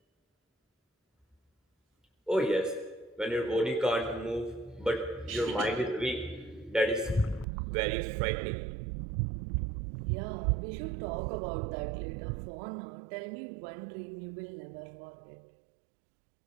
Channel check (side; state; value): left; drops out; at 7.5 s